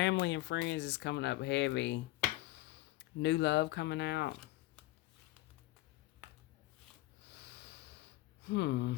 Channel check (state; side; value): quieter; right; 17.8 dB